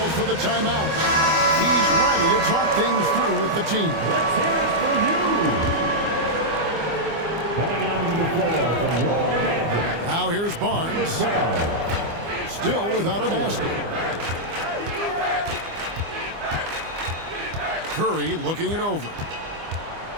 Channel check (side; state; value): left; late; 25 ms